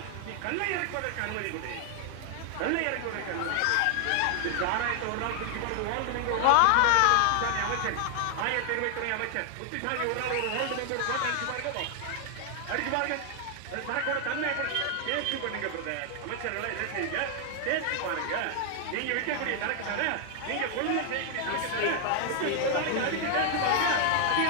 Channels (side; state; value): both; different; correlation 0.00